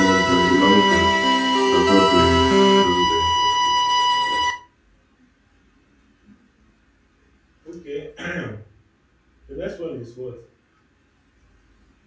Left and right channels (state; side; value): identical; both; correlation 1.00